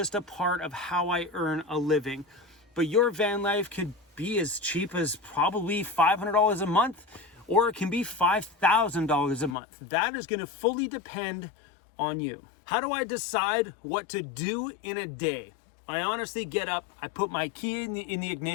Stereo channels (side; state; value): right; drops out; at 9.6 s